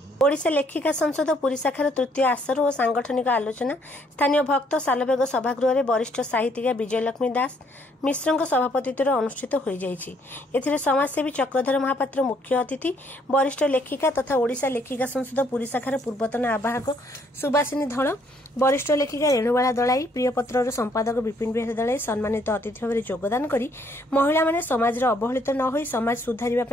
ओडिशा लेखिका संसद पुरी शाखार तृतीय आसर और सांगठनिक आलोचना स्थानीय भक्त सालबेग सभागृह में वरिष्ठ साहित्यिका विजयलक्ष्मी दास मिश्र सभापतित्व अनुष्ठित हो जाए। समाजसेवी चक्रधर महापात्र मुख्य अतिथि, वरिष्ठ लेखिका तथा ओडिशा लेखिका संसद पुरी शाखार पूर्वतन आवाहक सुभाषिनी धल, वरिष्ठ लेखिका रेणुबाला दलाई, प्रियपत्र संपादक विपिन बिहारी दलाई सम्मानित अतिथि भाव योगदान कर महिला माने समाज अवहेलित न हो समाज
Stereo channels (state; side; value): normal; both; correlation 0.67